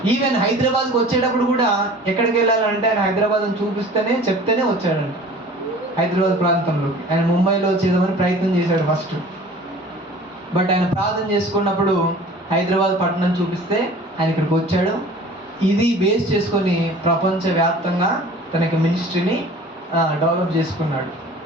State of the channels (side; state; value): both; normal; correlation 0.45